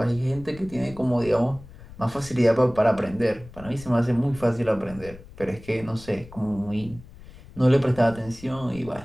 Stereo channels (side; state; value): left; noise; rumble, 18 dB below the sound